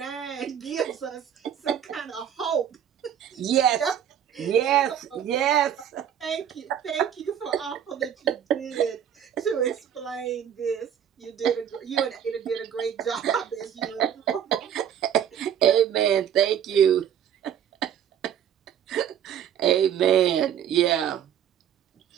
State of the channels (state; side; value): quieter; left; 9.3 dB